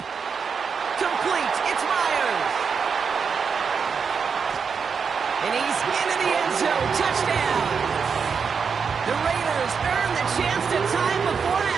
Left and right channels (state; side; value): quieter; left; 6.0 dB